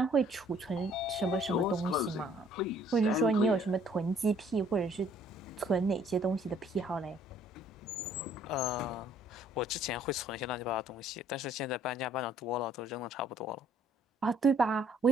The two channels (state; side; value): normal; both; correlation 0.60